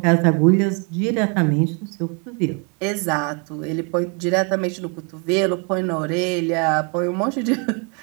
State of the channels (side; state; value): left; quieter; 35.2 dB